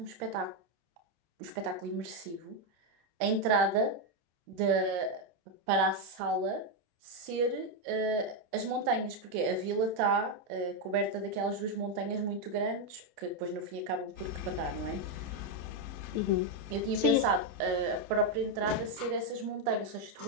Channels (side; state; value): left; late; 29 ms